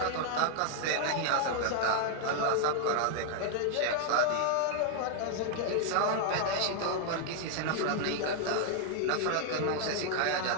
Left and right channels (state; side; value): different; both; correlation 0.00